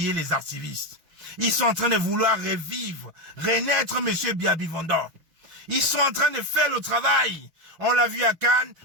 les activistes. Ils sont en train de vouloir revivre, renaître M. Biya Bivondor. Ils sont en train de faire le travail. On l'a vu à Cannes,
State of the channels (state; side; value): late; left; 6.1 ms